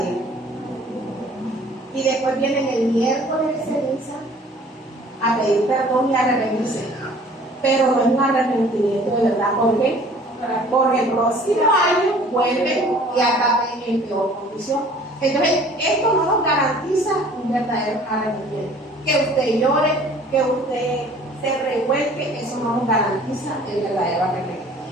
y después vienen el miércoles de ceniza a pedir perdón y a arrepentirse? Pero no es un arrepentimiento de verdad. ¿Por qué? Porque el próximo año vuelven y acaben en peor condición. Entonces, esto no nos garantiza un verdadero arrepentimiento. Que usted llore, que usted se revuelque, eso no nos garantiza el verdadero arrepentimiento.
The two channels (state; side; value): normal; both; correlation 0.52